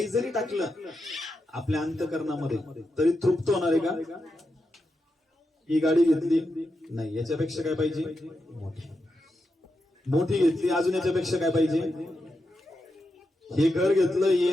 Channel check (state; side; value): normal; both; correlation 0.87